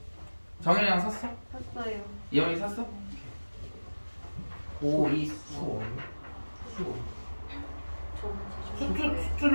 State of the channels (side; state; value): both; inverted; correlation -1.00